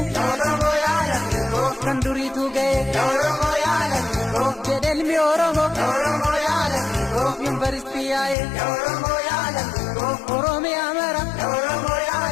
yaa Oromoo yaa lammii koo kan duriitu ga'e yaa Oromoo yaa lammii koo jedhe ilmi Oromoo yaa Oromoo yaa lammii koo yuunivarsiitii yaa'e yaa Oromoo yaa lammii koo Oromiyaa mara yaa Oromoo yaa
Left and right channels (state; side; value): drops out; right; at 8.3 s